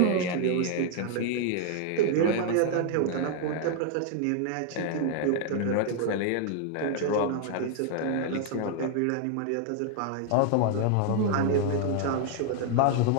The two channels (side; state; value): both; different; correlation 0.00